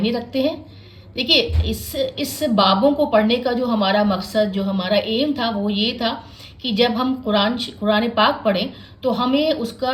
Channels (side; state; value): both; identical; correlation 1.00